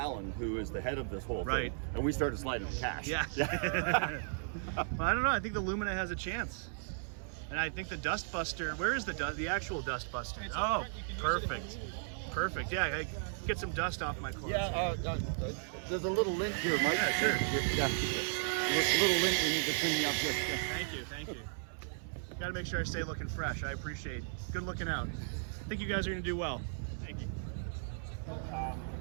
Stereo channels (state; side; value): silent; left; 54 dB below the other